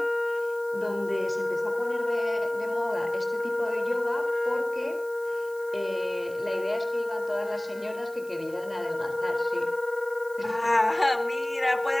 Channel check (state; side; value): noise; right; hiss, 22 dB below the sound